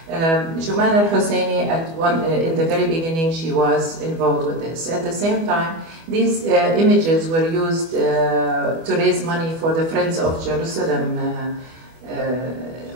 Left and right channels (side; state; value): left; late; 24 ms